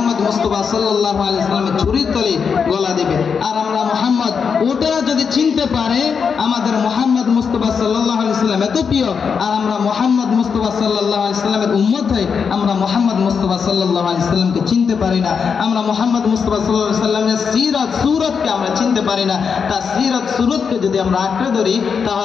মুস্তাফা সাল্লাল্লাহু আলাইহি সাল্লামের ছুরির তলে গলা দেবে। আর আমরা মুহাম্মদ, ওটারা যদি চিনতে পারে আমাদের মুহাম্মদ মুস্তাফা সাল্লাল্লাহু আলাইহি সাল্লাম এত প্রিয়, আর আমরা মুহাম্মদ মুস্তাফা সাল্লাল্লাহু আলাইহি সাল্লামের উম্মত হই, আমরা মুহাম্মদ মুস্তাফা সাল্লাল্লাহু আলাইহি সাল্লামকে চিনতে পারি না। আমরা মুহাম্মদ মুস্তাফা সাল্লাল্লাহু আলাইহি সাল্লামের সিরাত সুরতকে আমরা চিনতে পারি না। তার সিরাত সুরতকে যদি আমরা আঁকড়ে ধরি,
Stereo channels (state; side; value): quieter; right; 6.2 dB